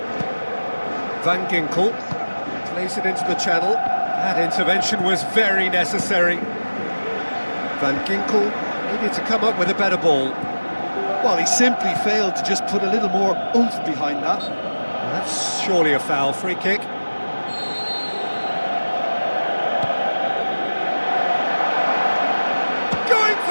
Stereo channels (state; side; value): inverted; both; correlation -1.00